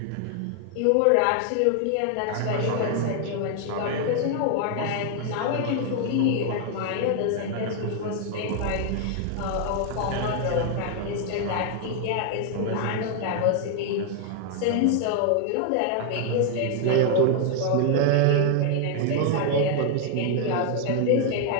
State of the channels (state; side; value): different; both; correlation 0.00